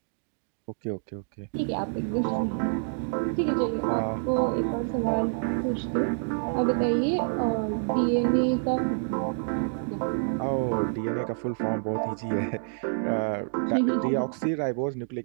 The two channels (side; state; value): left; silent; digital silence